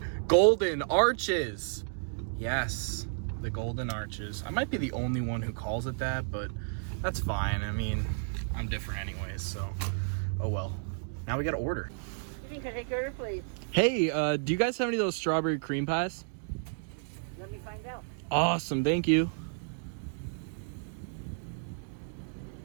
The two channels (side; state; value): left; silent; digital silence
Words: Golden Arches. Yes, the Golden Arches. I might be the only one who calls it that, but that's fine. I mean, I'm different anyways, so oh well. Now we gotta order. Can I take your order, please? Hey, do you guys have any of those strawberry cream pies? Let me find out. Awesome, thank you.